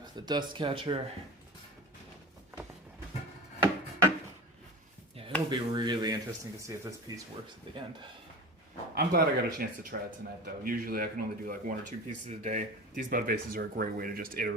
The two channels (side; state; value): both; normal; correlation 0.32